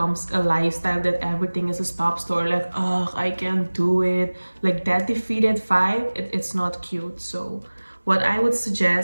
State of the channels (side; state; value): both; inverted; correlation -1.00